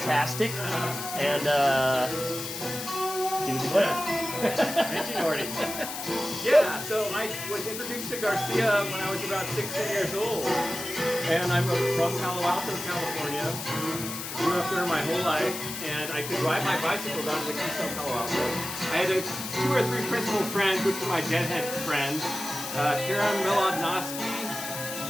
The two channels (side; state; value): left; noise; hiss, 7 dB below the sound